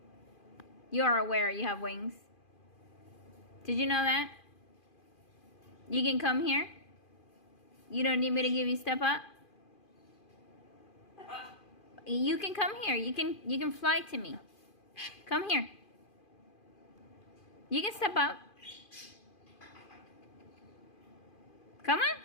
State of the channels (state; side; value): late; right; 2.5 ms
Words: You are aware you have wings. Did you know that? You can come here. You don't need me to give you step up. You can come here. You can fly to me. Come here. You can step up. Come on.